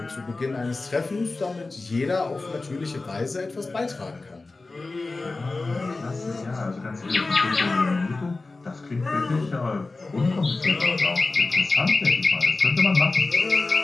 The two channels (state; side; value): quieter; right; 3.5 dB